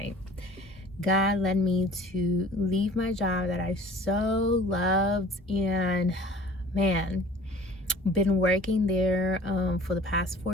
God led me to leave my job that I so loved, and man, been working there for the past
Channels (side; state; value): both; normal; correlation 0.48